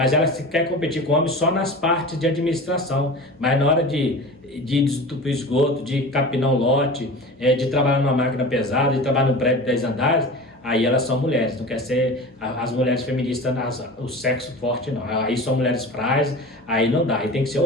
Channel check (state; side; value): normal; both; correlation 0.34